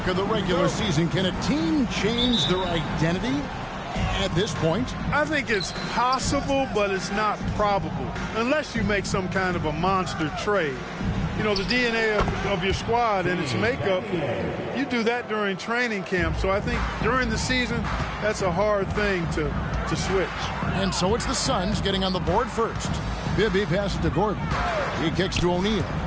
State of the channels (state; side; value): identical; both; correlation 1.00